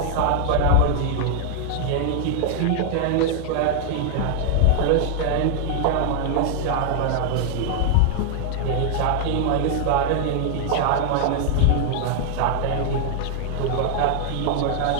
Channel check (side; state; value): both; different; correlation 0.00